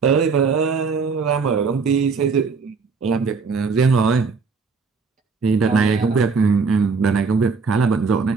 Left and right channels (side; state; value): left; quieter; 4.9 dB